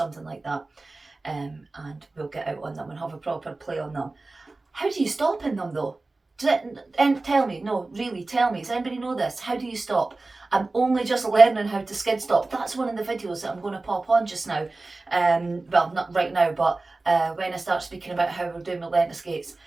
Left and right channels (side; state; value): left; quieter; 3.3 dB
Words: like that, and we'll get out on them and have a proper play on them. How do you stop in them though? Tell me, no, really, tell me. Does anybody know this? How do you stop? I'm only just learning how to skid stop. That's one of the videos that I'm going to pop on just now. Well, not right now, but when I start speaking about how we're doing my Lenta skates,